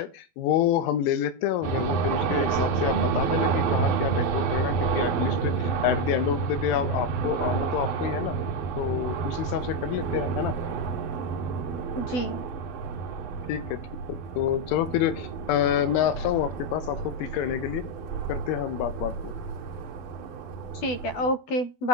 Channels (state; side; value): late; right; 11 ms